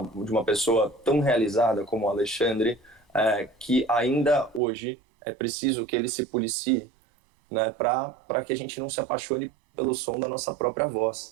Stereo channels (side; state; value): left; drops out; at 4.6 s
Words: pessoa tão realizada como o Alexandre, que ainda hoje é preciso que ele se policie, né, para que a gente não se apaixone pelo som da nossa própria